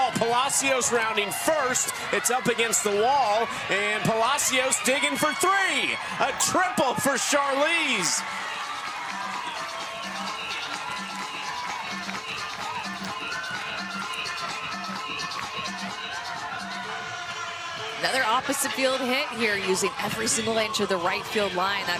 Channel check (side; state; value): both; identical; correlation 1.00